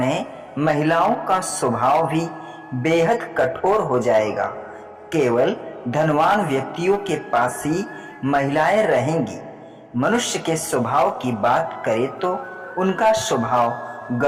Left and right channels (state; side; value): identical; both; correlation 1.00